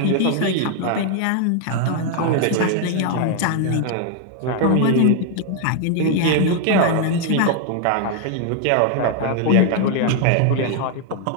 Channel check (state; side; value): different; both; correlation 0.00